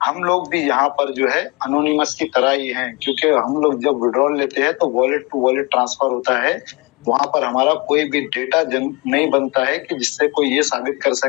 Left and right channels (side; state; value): right; quieter; 27.1 dB